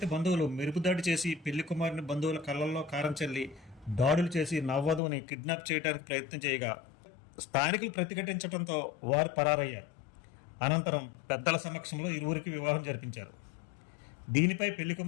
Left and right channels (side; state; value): right; drops out; at 5.0 s